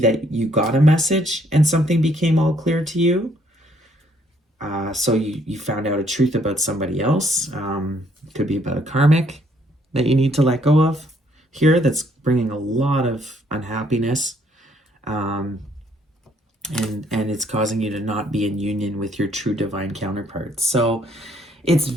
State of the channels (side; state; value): both; normal; correlation 0.67